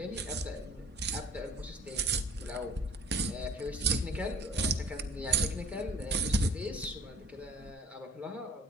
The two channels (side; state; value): both; normal; correlation 0.51